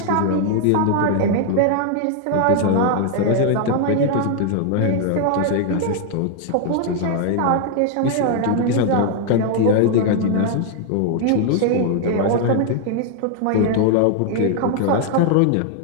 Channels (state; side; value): different; both; correlation 0.00